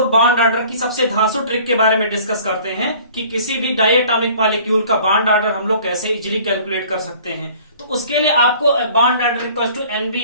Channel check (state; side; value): inverted; both; correlation -0.50